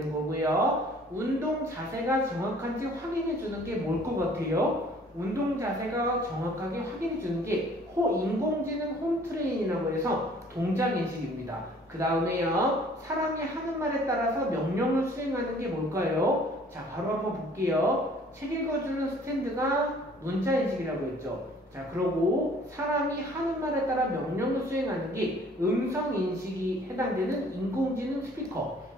거고요. 운동 자세가 정확한지 확인해 주는 게 뭘 것 같아요? 운동 자세가 정확하게 확인해 주는 게 인공지능 홈 트레인이라고 해서 동작 인식입니다. 그 다음에요, 사람이 하는 말에 따라서 명령을 수행하는 게 뭘까요? 자, 바로 한번 볼게요. 책 읽어주는 스탠드가 문자 인식이라고 했죠. 자, 그러고 사람이 하는 말에 따라 명령을 수행하는 게 음성 인식이 해당되는 인공지능 스피커,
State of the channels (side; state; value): both; normal; correlation 0.55